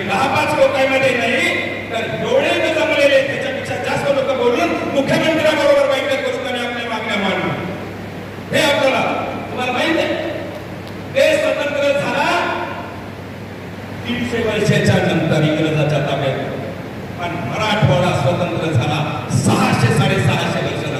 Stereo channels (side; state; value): both; identical; correlation 1.00